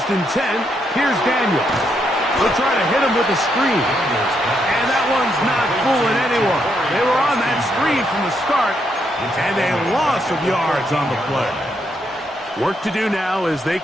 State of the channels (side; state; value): both; normal; correlation 0.78